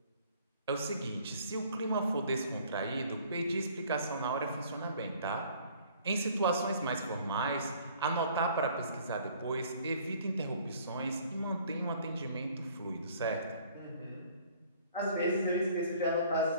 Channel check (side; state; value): both; inverted; correlation -0.55